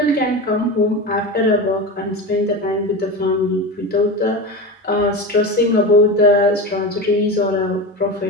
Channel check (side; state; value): both; normal; correlation 0.24